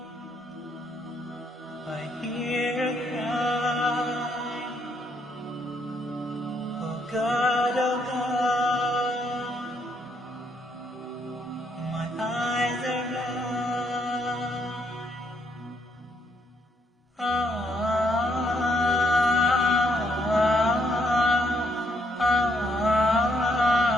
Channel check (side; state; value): both; normal; correlation 0.73